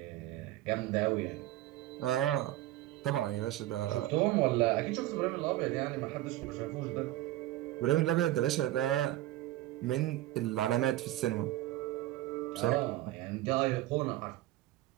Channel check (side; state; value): left; quieter; 15.5 dB